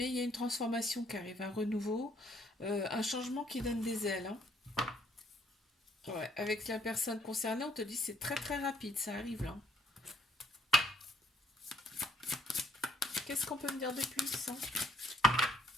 il y a une transformation qui arrive, un renouveau, un changement qui donne des ailes, hein. Ouais, avec la personne concernée, on te dit c'est très très rapide, ça arrive là. Qu'est-ce qu'on peut me dire de plus, hein?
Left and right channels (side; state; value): both; normal; correlation 0.65